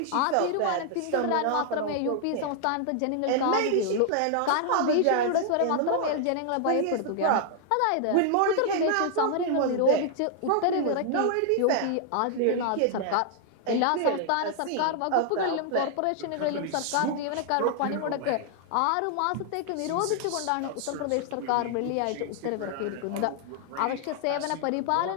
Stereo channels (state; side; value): different; both; correlation 0.00